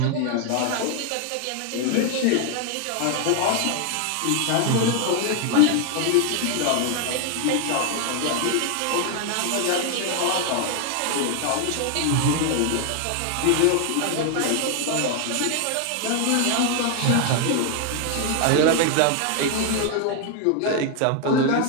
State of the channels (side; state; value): both; different; correlation 0.00